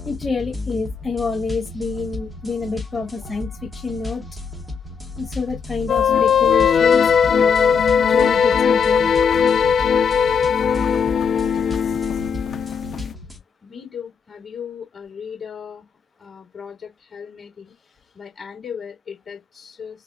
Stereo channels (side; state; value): right; quieter; 6.2 dB